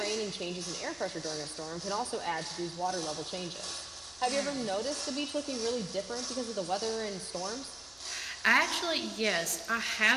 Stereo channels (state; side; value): noise; left; hum, 26 dB below the sound